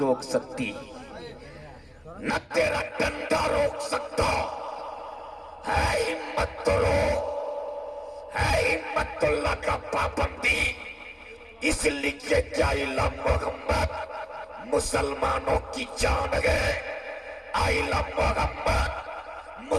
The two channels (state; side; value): identical; both; correlation 1.00